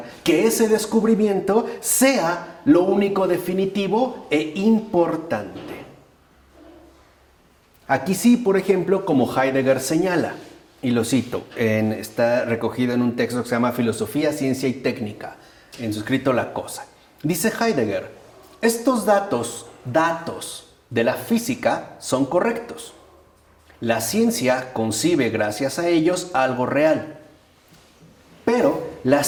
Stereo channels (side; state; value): both; identical; correlation 1.00